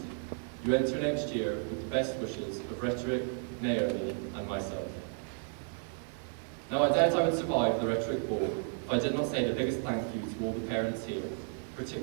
You enter next year with the best wishes of Rhetoric, Naomi, and myself. Now I doubt I would survive the Rhetoric Ball if I did not say the biggest thank you to all the parents here,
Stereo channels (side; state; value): left; silent; 56 dB below the other